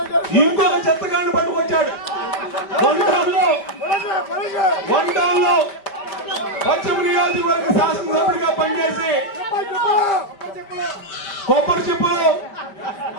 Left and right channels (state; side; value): late; right; 5.1 ms